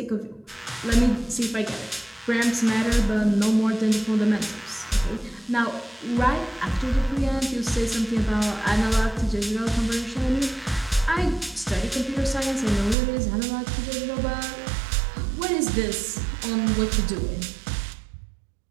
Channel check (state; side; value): drops out; left; at 13.0 s